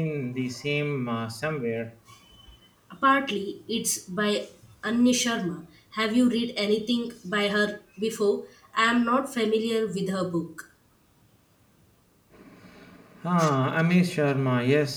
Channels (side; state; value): both; identical; correlation 1.00